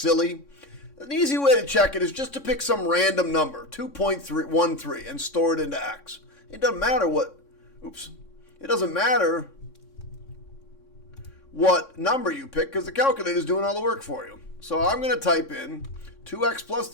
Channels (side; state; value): right; late; 3.6 ms